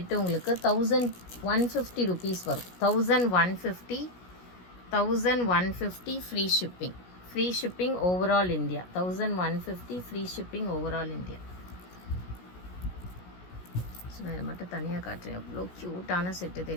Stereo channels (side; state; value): right; late; 17 ms